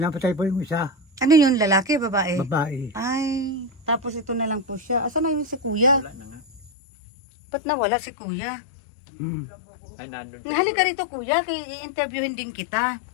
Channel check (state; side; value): drops out; right; at 6.7 s